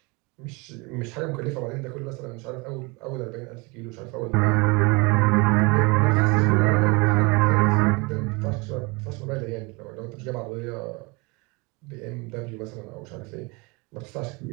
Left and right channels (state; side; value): quieter; left; 27.7 dB